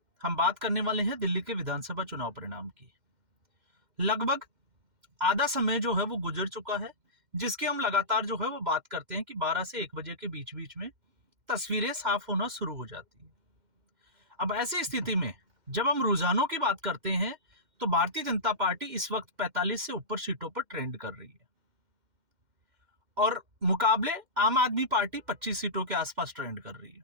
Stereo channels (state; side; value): late; left; 2.1 ms